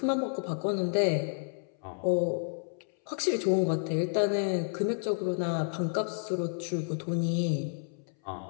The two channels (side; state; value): right; silent; 57 dB below the other